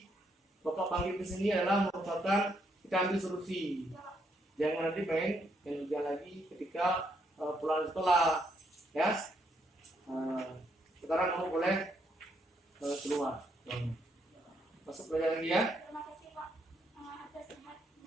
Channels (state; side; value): normal; both; correlation 0.75